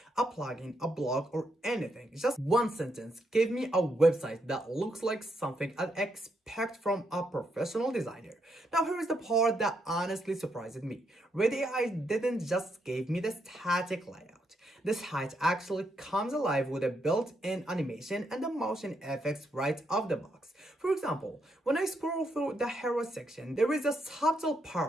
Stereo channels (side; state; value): both; normal; correlation 0.79